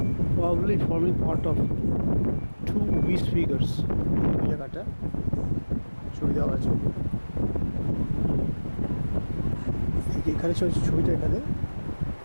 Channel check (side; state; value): both; inverted; correlation -1.00